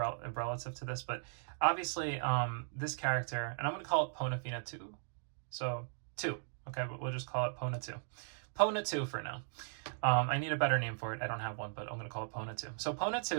to this, but obviously this character, and I'm going to call it Ponafina 2. So 2, okay, but we'll just call it Pona 2. Pona 2 for now. I need a better name for it. I don't have one, but I'm going to call it Pona 2. So Pona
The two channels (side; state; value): left; silent; digital silence